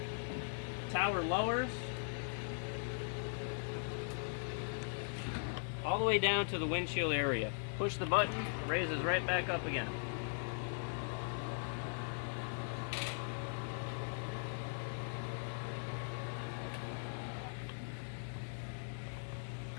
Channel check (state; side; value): silent; right; 51 dB below the other